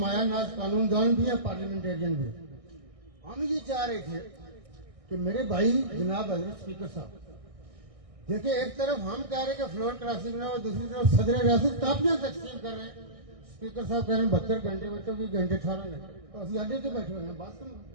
नाज कानूनदान भी है, पार्लियामेंटेरियन भी है। हम ये चाह रहे थे कि मेरे भाई जनाब हजरत स्पीकर साहब देखिए, एक तरफ हम कह रहे हैं कि फ्लोर क्रॉसिंग ना हो, दूसरी तरफ सदर रियासत कापियां तकसीम कर रहे हैं। स्पीकर साहब कह रहे हैं 72 घंटे, बच्चों 20 घंटे 18 घंटे, तो अभी अड्डे से बैठे हुए हैं। बात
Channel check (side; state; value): left; late; 1.6 ms